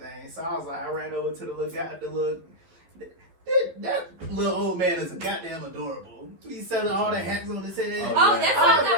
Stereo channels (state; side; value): late; left; 11 ms